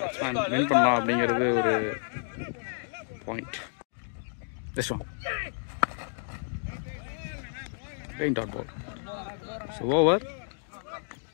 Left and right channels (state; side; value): silent; right; digital silence